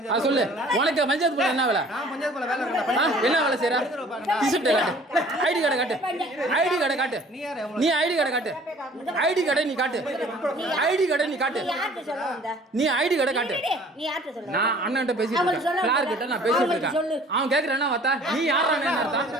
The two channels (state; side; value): normal; both; correlation 0.52